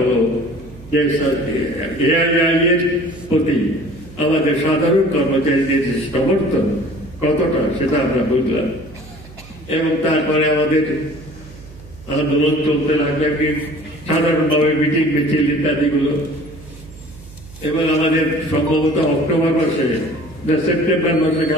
যে এআইআই এর প্রতি আমাদের সাধারণ কর্মচারীদের সমর্থন কতটা সেটা আমরা বুঝলাম। এবং তারপরে আমাদের আন্দোলন চলতে লাগবে, সাধারণভাবে মিটিং মিছিল ইত্যাদিগুলো। এবং আমাদের সম্ভবত অক্টোবর মাসে সেপ্টেম্বর মাসে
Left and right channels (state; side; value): noise; right; hum, 19 dB below the sound